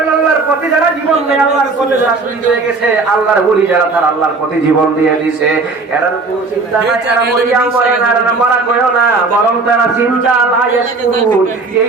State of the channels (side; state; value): left; quieter; 3.8 dB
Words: যারা জীবন দেয় আল্লাহর পথে যারা শহীদ হয়ে গেছে, আল্লাহর ওলি যারা তারা আল্লাহর পথে জীবন দিয়ে দিছে, এরা কোনো চিন্তা নাই এরা মরিয়া মরে না, এরা মরা কইও না, বরং তারা চিন্তা লায়াস করুন।